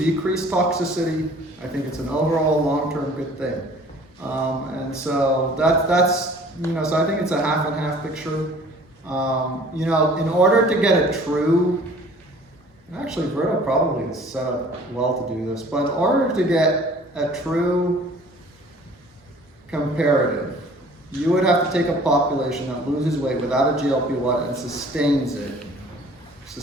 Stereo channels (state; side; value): normal; both; correlation 0.51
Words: toxicity, I think it's an overall long-term good thing. And so that's so I think it's a half and half picture. In order to get a true, actually Verta probably is set up well to do this, but in order to get a true comparative, you would have to take a population that loses weight without a GLP-1 and sustains